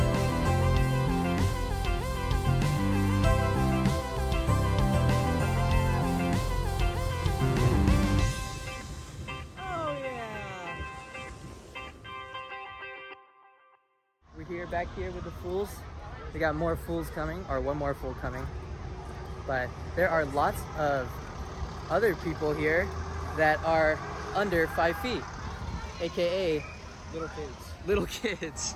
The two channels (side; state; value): both; identical; correlation 1.00